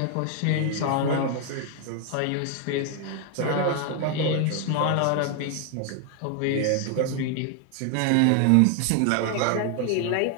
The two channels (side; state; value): both; different; correlation 0.00